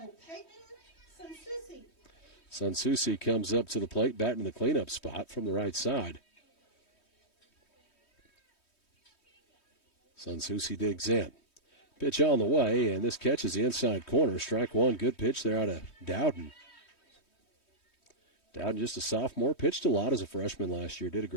Peyton Sansusi. Sansusi comes up to the plate, batting in the cleanup spot from the right side. Sansusi digs in. Pitch on the way, and this catches the inside corner. Strike one. Good pitch there out of Dowden. Dowden, just a sophomore, pitched a lot as a freshman last year. Did a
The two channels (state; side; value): late; right; 3.2 ms